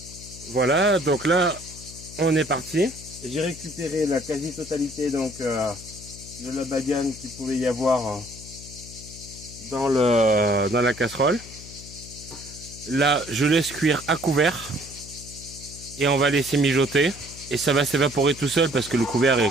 voilà, donc là on est parti. J'ai récupéré la quasi-totalité donc de la badiane qu'il pouvait y avoir dans la casserole. Là, je laisse cuire à couvert et on va laisser mijoter et ça va s'évaporer tout seul parce que le couvercle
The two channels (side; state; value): left; noise; hum, 16 dB below the sound